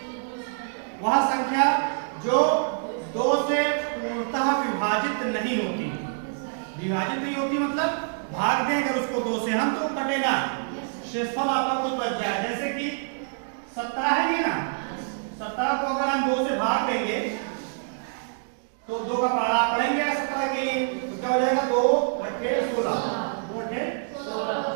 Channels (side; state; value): left; silent; digital silence